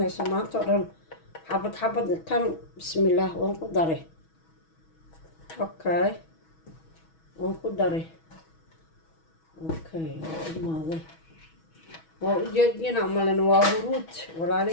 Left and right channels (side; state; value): right; late; 6.2 ms